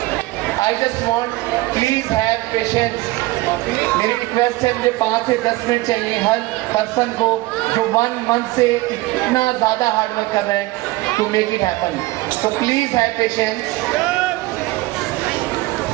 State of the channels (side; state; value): left; quieter; 19.9 dB